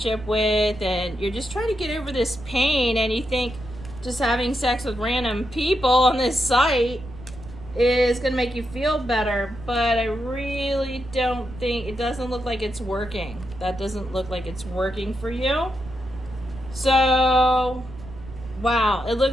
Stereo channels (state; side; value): noise; right; rumble, 15 dB below the sound